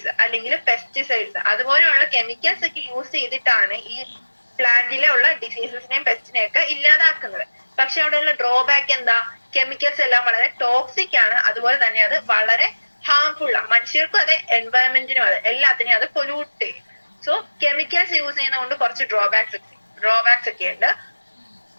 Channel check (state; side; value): inverted; both; correlation -1.00